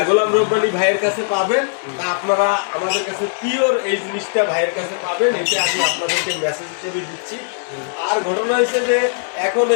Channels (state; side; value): silent; right; 59 dB below the other